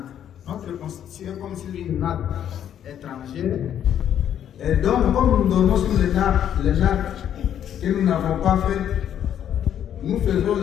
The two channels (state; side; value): quieter; right; 9.9 dB